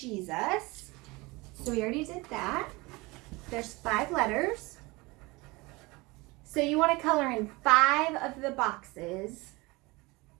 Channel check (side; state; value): left; quieter; 23.9 dB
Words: So we already did that. There's 5 letters. So you want to color in 5 of the boxes